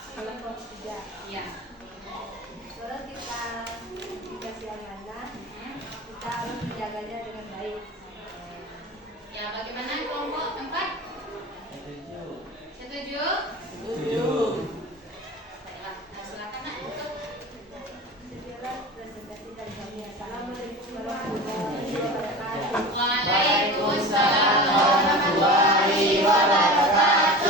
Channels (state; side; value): normal; both; correlation 0.33